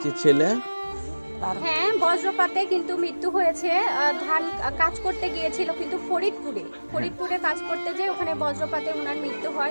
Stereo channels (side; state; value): both; inverted; correlation -1.00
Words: ছেলে হ্যাঁ, বজ্রপাতে কিন্তু মৃত্যু হয়েছে। ধান কাজ করতে গিয়েছিল কিন্তু ফরিদপুরে কাজ করতে যেয়ে ওখানে বজ্রপাতে ওনার মৃত্যু